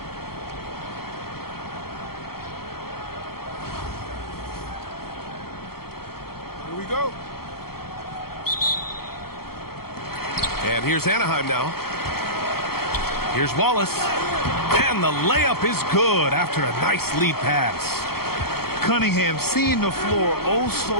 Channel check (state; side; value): late; right; 0.94 ms